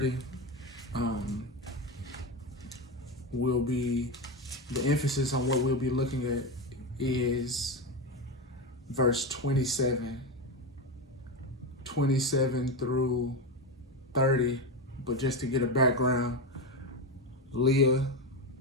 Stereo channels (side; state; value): both; normal; correlation 0.15